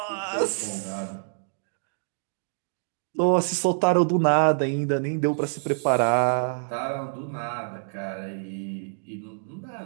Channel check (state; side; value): silent; left; digital silence